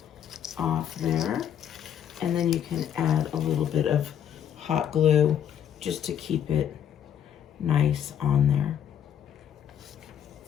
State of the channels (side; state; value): right; quieter; 9.3 dB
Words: off there. And then you can add a little bit of hot glue just to keep it nice on there.